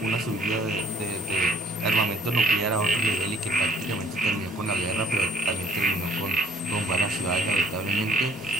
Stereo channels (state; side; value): normal; both; correlation 0.58